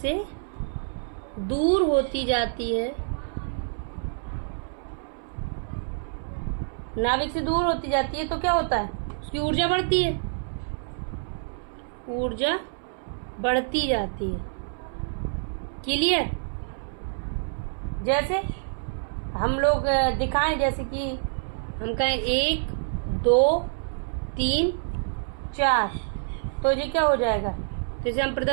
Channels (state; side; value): silent; left; 60 dB below the other